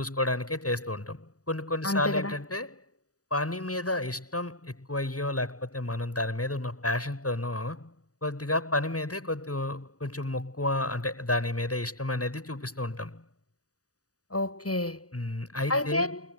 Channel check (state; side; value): late; right; 0.67 ms